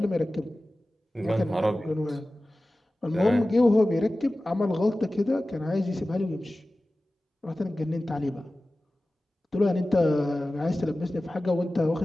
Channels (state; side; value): normal; both; correlation 0.96